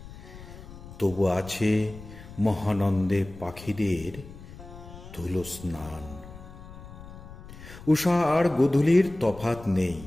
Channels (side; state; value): left; noise; rumble, 16 dB below the sound